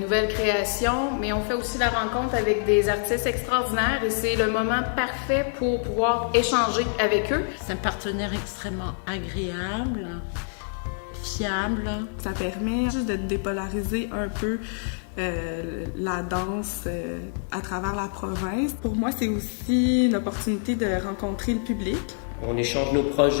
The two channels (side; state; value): right; silent; 61 dB below the other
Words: créations, mais on fait aussi la rencontre avec des artistes extraordinaires et c'est le moment parfait pour pouvoir échanger avec eux. C'est un partenaire extrêmement agréable, fiable. Ça permet juste de dépolariser un peu la danse à travers la province. Pour moi, c'est aussi une opportunité de rencontrer le public. On échange nos